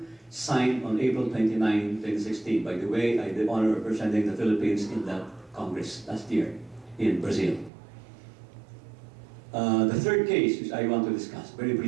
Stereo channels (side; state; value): left; drops out; at 7.7 s